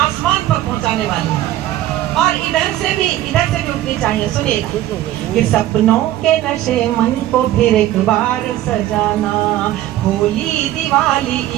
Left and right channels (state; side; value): quieter; left; 14.0 dB